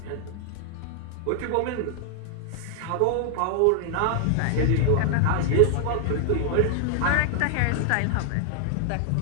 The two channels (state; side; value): different; both; correlation 0.00